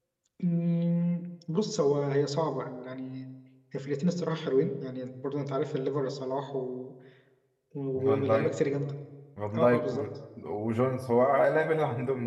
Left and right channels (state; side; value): identical; both; correlation 1.00